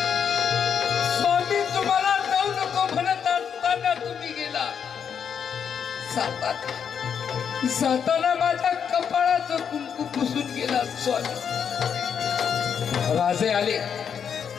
स्वामी तुम्हाला जाऊ नको म्हणत असताना तुम्ही गेला. जाताना माझ्या कपाळाचं कुंकू पुसून गेला. स्वामी. राजे आले.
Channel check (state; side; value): quieter; right; 7.5 dB